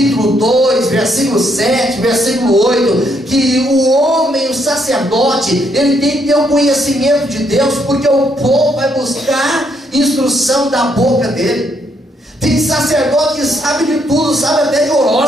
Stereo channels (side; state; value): both; normal; correlation 0.73